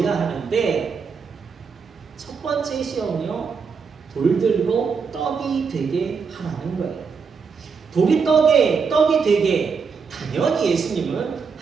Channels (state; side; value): quieter; left; 5.6 dB